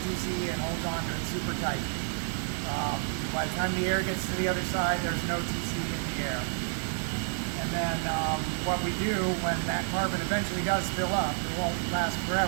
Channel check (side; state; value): left; silent; 58 dB below the other